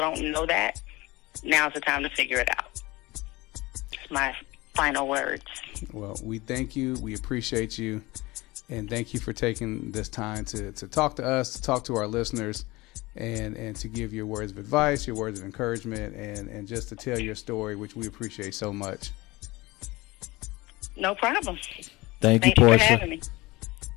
don't know that, now's the time to figure it out. It's my final words. Well, we thank you. We appreciate you. And thank you for taking this time to talk to us, to talk to our listeners, and to give your words of advice, your words of encouragement, and just to tell your story, which we appreciate so much. No problem. Thank you, Thanks for Portia. having me.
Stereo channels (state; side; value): quieter; right; 21.5 dB